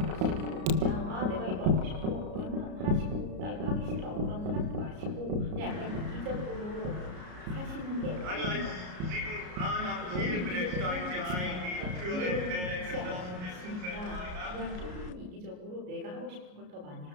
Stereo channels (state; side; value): late; left; 33 ms